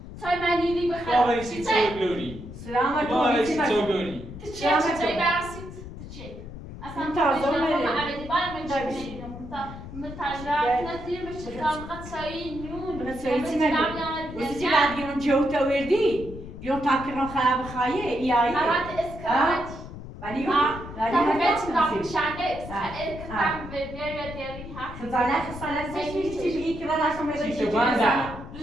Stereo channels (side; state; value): left; noise; rumble, 12 dB below the sound